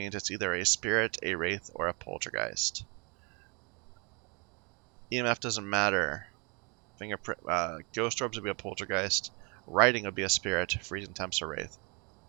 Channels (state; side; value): quieter; left; 32.1 dB